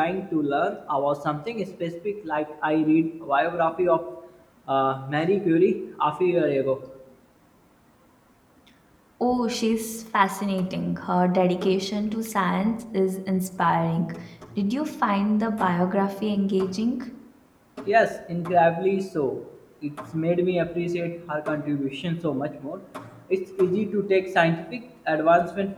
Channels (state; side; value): identical; both; correlation 1.00